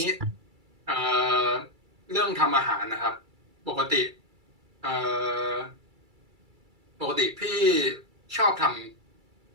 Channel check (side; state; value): left; late; 2.3 ms